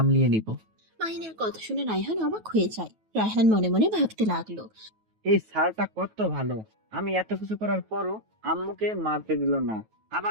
নিব। মাহিনের কথা শুনে রায়হান অবাক হয়ে যায়। রায়হান মনে মনে ভাবতে লাগলো, এই স্যারটা কত ভালো, আমি এত কিছু করার পরও আম্মুকে মারতে দিল না।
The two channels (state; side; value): late; left; 9.2 ms